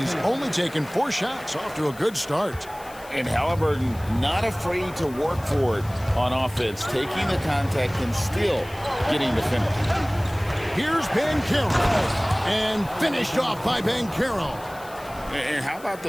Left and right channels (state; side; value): noise; left; hiss, 21 dB below the sound